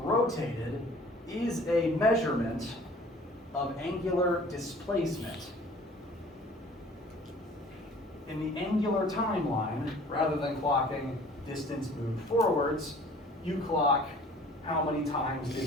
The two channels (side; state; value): both; normal; correlation 0.50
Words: is a measurement of angular displacement. In the angular timeline, rather than clocking distance moved forwards, you clock how many times